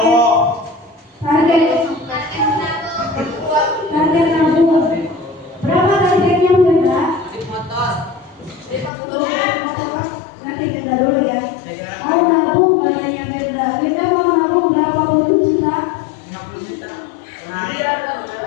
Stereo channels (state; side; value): drops out; right; at 8.9 s